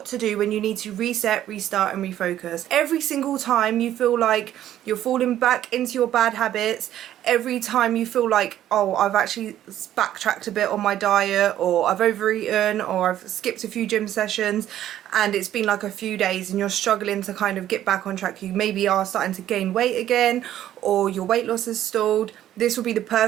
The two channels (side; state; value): left; quieter; 12.1 dB